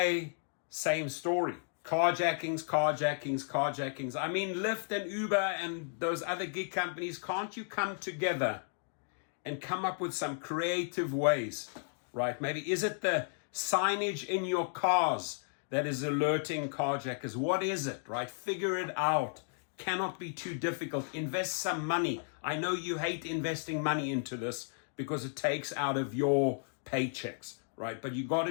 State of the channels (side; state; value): right; silent; digital silence